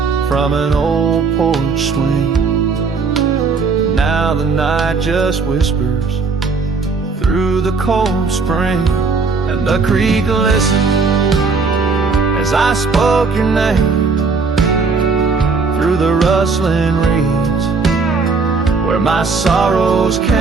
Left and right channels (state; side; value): quieter; left; 4.5 dB